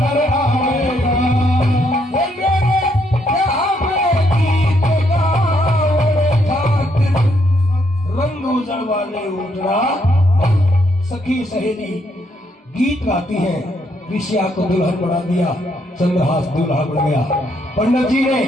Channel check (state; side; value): normal; both; correlation 0.73